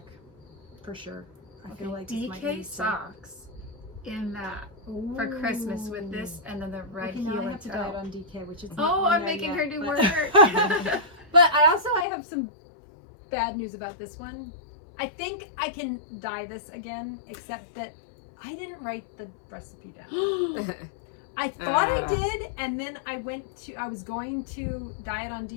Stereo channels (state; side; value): drops out; right; at 12.1 s